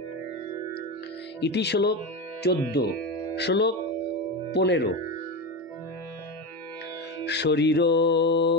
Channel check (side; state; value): both; normal; correlation 0.19